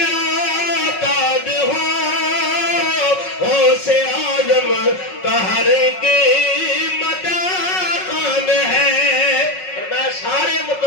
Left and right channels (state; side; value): late; right; 5.4 ms